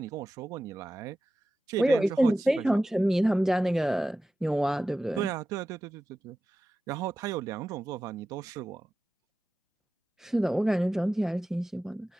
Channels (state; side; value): normal; both; correlation 0.92